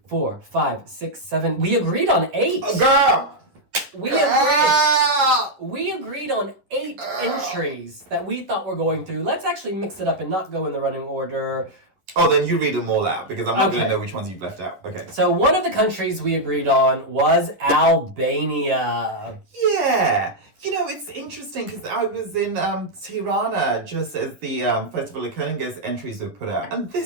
4, 5, 6, 7. We agreed on 8. Girl. We agreed on 8 entries that we thought were going through. Let's actually mix it up and not go in the running order. Oh, then you read them all out because I'm not going to know which ones you've left out. Okay. So one of the countries we agreed on was Albania. Yeah. You know, it's interesting because I was in Tirana just as the Festival of Kuning's entries were put out. And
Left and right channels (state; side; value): late; left; 10 ms